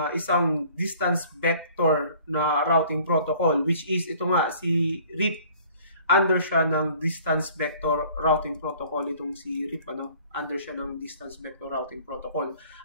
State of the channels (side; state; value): both; inverted; correlation -0.52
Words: isang distance vector na routing protocol, which is ito nga, si RIP. Under siya ng distance vector routing protocol, itong si RIP, under siya ng distance vector routing protocol.